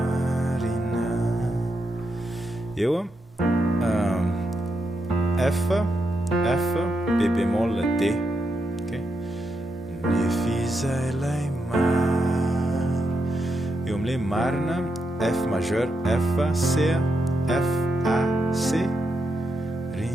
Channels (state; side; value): normal; both; correlation 0.83